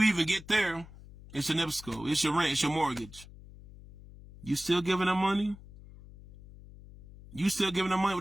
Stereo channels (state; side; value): noise; left; hum, 19 dB below the sound